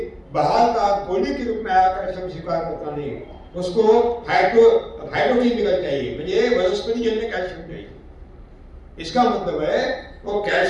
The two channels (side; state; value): both; identical; correlation 1.00